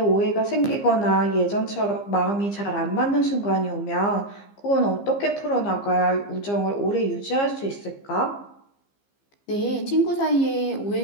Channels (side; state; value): right; late; 15 ms